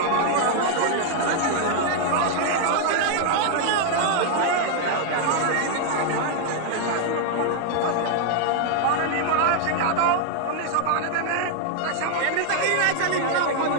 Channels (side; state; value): both; different; correlation 0.00